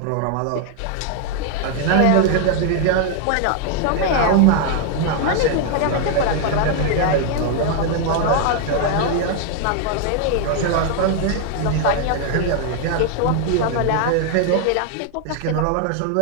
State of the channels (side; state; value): both; different; correlation 0.00